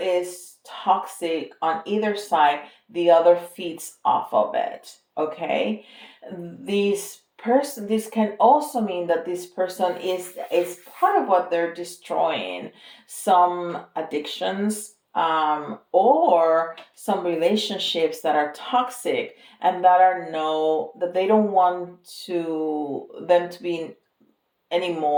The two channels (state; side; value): identical; both; correlation 1.00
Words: toxic on either side, the other feeds off of it. Okay, this can also mean that this person is part of what they're destroying, some addictions, or some relationships that are toxic, and that they don't want them to be any